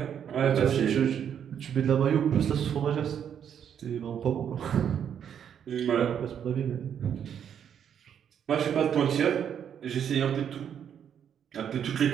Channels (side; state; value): left; quieter; 8.6 dB